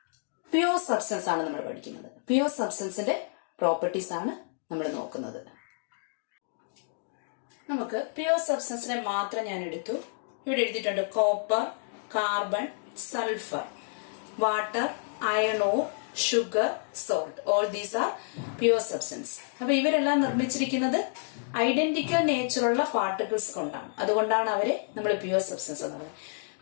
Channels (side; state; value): right; silent; digital silence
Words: പ്യുവർ സബ്സ്റ്റൻസ് ആണ് നമ്മൾ പഠിക്കുന്നത്. പ്യുവർ സബ്സ്റ്റൻസിന്റെ പ്രോപ്പർട്ടീസ് ആണ് നമ്മൾ നോക്കുന്നത്. നമുക്ക് പ്യുവർ സബ്സ്റ്റൻസിനെ മാത്രം ഞാൻ എടുത്തു. ഇവിടെ എഴുതിയിട്ടുണ്ട് copper, carbon, sulphur, water, iron ore, sugar, salt. All these are pure substance. അപ്പൊ ഇവരെല്ലാം നിർമ്മിച്ചിരിക്കുന്നത് ഐഡന്റിക്കൽ നേച്ചറുള്ള പാർട്ടിക്കിൾസ് കൊണ്ടാണ്. അതുകൊണ്ടാണ് അവരെ നമ്മൾ പ്യുവർ സബ്സ്റ്റൻസ് എന്ന് പറയുന്നത്.